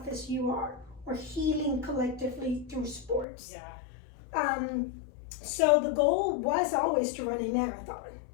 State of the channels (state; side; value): drops out; right; at 3.2 s